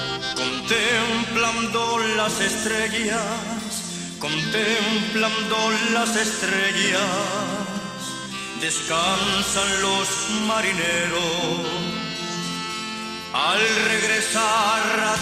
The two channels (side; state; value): both; identical; correlation 1.00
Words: contemplando las estrellas, descansan los marineros. Al regresar a